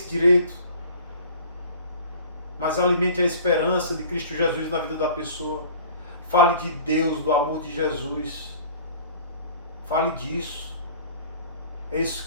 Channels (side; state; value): both; inverted; correlation -0.46